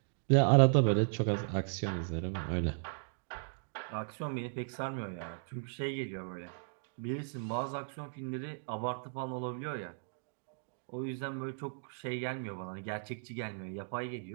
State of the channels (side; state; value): left; silent; digital silence